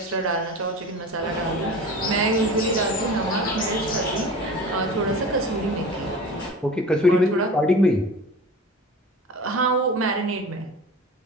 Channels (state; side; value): normal; both; correlation 0.36